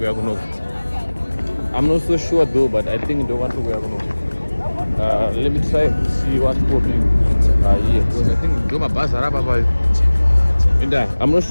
are going to. I'm not so sure though, but I think in the one we are going to. Let me try to see what's popping here. Because I think do my bus I'm not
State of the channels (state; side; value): inverted; both; correlation -1.00